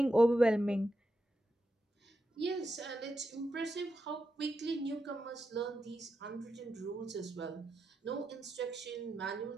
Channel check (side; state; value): both; normal; correlation 0.87